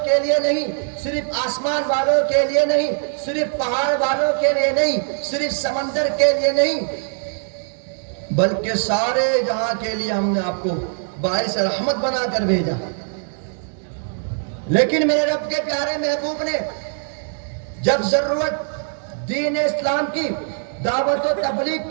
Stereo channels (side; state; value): left; silent; digital silence